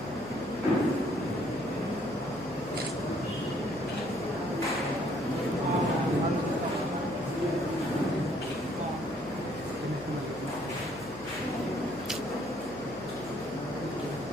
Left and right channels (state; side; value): noise; left; hum, 19 dB below the sound